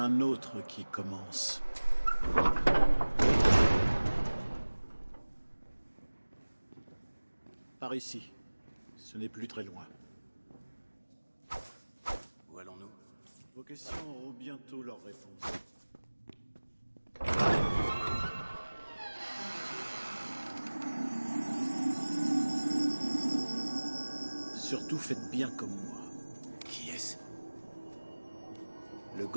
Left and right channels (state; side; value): inverted; both; correlation -1.00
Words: autre qui commence. Par ici. Ce n'est plus très loin. Où allons-nous? Vos questions auront bientôt leur réponse. Surtout faites bien comme moi. Qui est-ce? Le